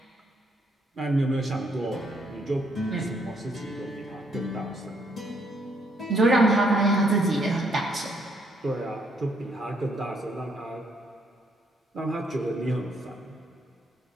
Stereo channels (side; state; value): both; normal; correlation 0.71